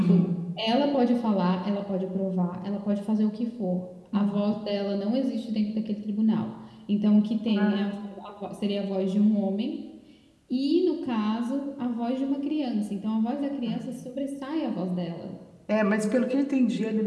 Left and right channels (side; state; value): both; identical; correlation 1.00